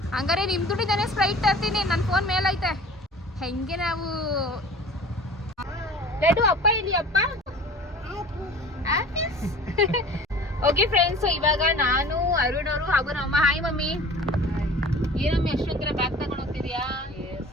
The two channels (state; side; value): normal; both; correlation 0.43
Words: ಹಂಗಾರೆ ನಿಮ್ಮ ದುಡ್ಡಿದ್ದಾನೆ ಸ್ಪ್ರೈಟ್ ತರ್ತೀನಿ. ನನ್ನ ಫೋನ್ ಮೇಲೈತೆ. ಹೆಂಗೆ ನಾವು ಲೆಡು ಅಪ್ಪ ಇಲ್ಲಿ ಅಪ್ಪ. ಓಕೆ ಫ್ರೆಂಡ್ಸ್, ಇವಾಗ ನಾನು ಅರುಣ್ ಅವರು ಹಾಗೂ ನಮ್ಮ ಹಾಯ್ ಮಮ್ಮಿ. ಏನಮ್ಮಿ ಅಷ್ಟೊಂದರ ಬ್ಯಾಗ್ ತಗೊಂಡು ಹೋಗ್ತಿದ್ಯಾ